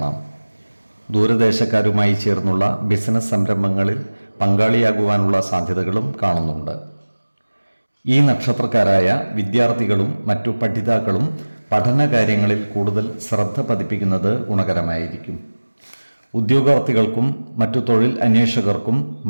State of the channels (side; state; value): both; inverted; correlation -1.00